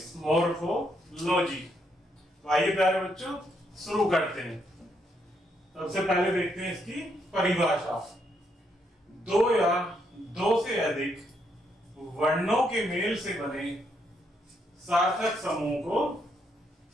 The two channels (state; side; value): normal; both; correlation 0.76